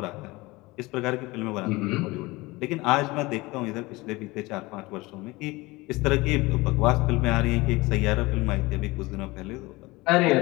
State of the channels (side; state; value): right; quieter; 22.1 dB